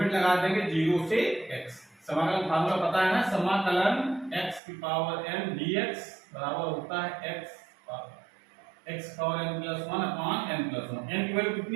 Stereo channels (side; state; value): left; drops out; at 4.6 s